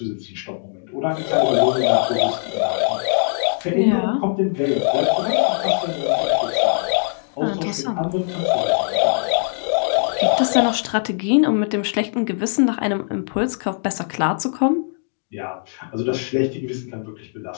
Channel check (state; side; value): silent; right; digital silence